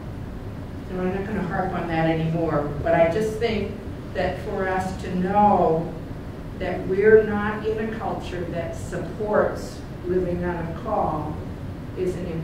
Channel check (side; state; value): both; identical; correlation 1.00